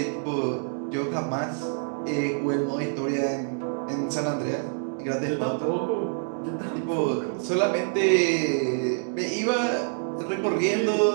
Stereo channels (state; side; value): silent; left; digital silence